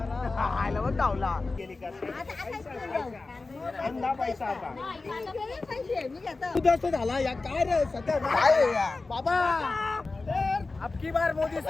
खायला पण धावला गेली का पैसा आता झाला या काय रे सध्या काय बाबा अबकी बार मोदी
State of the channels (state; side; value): quieter; right; 3.6 dB